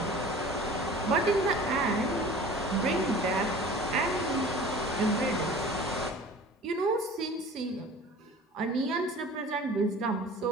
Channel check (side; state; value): both; normal; correlation 0.43